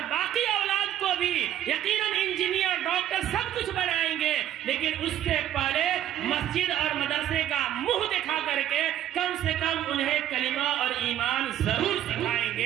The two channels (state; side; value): quieter; left; 11.6 dB